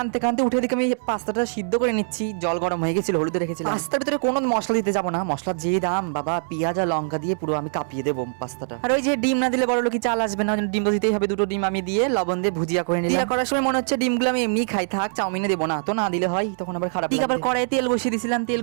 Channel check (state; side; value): silent; left; 63 dB below the other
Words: কানতে উঠে দিকে আমি পাস্তাটা সিদ্ধ করে নিচ্ছি। জল গরম হয়ে গেছিল, হলুদ রেখেছিলাম। পাস্তার ভিতরে কোনো মশলা দিতে যাবো না, মশলার যে দাম বাবা, পেঁয়াজ আর লঙ্কা দিয়ে পুরো আমি কাঁপিয়ে দেবো পাস্তাটা। আর ওই যে ডিম না দিলে বড় লোক চাল আসবে না, ডিম তো দিতেই হবে। দুটো ডিম আমি দিয়ে লবণ দিয়ে ভুজিয়া করে নিলাম। করার সময় মনে হচ্ছে ডিমগুলো আমি এমনি খাই, থাক চাউমিনে দেবো না, তো না দিলে হয় তখন আবার খারাপ। ঠিক, আবার কড়াই তেল বসিয়ে দিয়েছিলাম, তেল